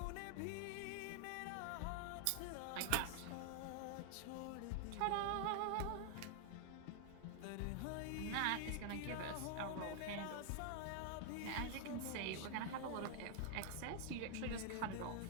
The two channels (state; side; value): different; both; correlation 0.00